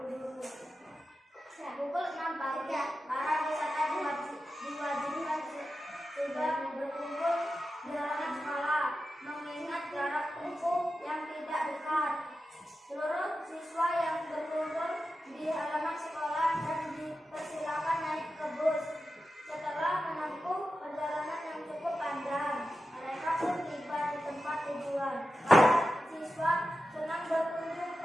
Pukul 6 pagi, para wisata diwajibkan sudah berkumpul di halaman sekolah, mengingat jarak tempuh yang tidak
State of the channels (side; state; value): both; normal; correlation 0.91